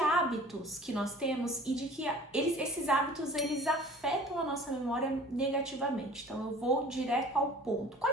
que nós temos e de que esses hábitos eles afetam a nossa memória negativamente. Então eu vou direto ao ponto.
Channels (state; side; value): normal; both; correlation 0.46